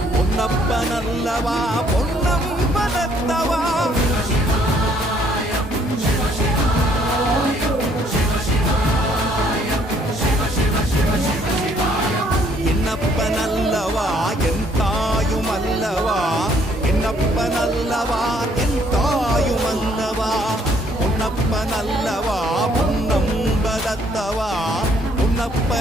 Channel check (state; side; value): normal; both; correlation 0.65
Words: பொன்னப்பனல்லவா பொன்னம்பலத்தவா என்னப்பனல்லவா என் தாயுமல்லவா என்னப்பனல்லவா என் தாயுமல்லவா பொன்னப்பனல்லவா பொன்னம்பலத்தவா